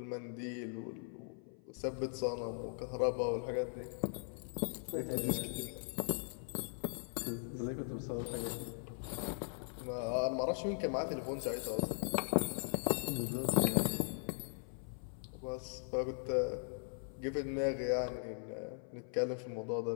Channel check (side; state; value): right; silent; 51 dB below the other